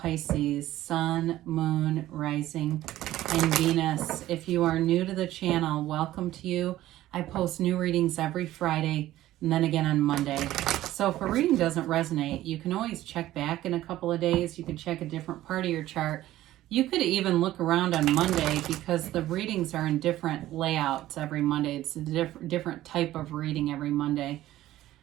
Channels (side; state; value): left; quieter; 14.7 dB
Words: Sun, Moon, Rising, and Venus. If you are new to the channel, welcome to you. I post new readings every Friday and then again on Monday. So if a reading doesn't resonate, you can always check back in a couple of days. You can check a different part of your chart. You could even look around on Monday because the readings are in different layouts every Monday. It's a different type of reading every Monday.